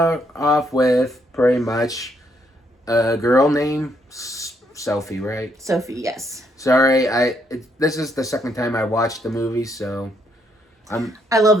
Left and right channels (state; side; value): normal; both; correlation 0.74